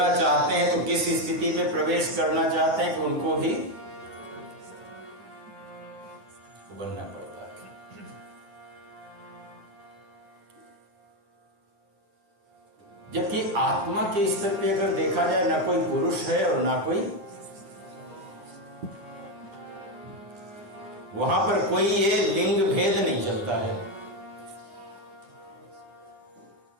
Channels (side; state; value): left; late; 9.7 ms